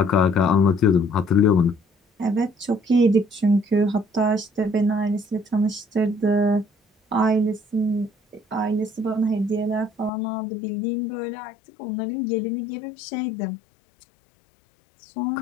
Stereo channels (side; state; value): right; drops out; at 10.1 s